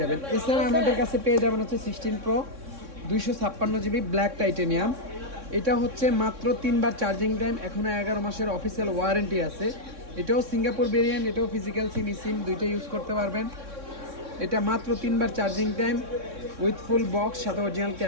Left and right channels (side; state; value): left; late; 3.6 ms